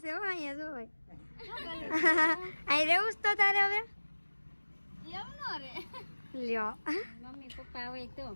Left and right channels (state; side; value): inverted; both; correlation -1.00